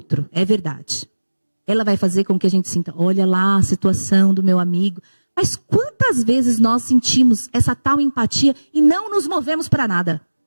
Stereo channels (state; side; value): inverted; both; correlation -1.00